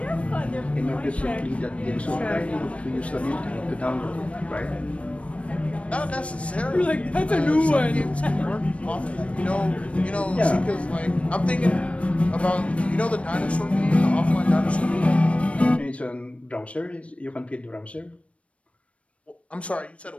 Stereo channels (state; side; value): late; right; 0.063 ms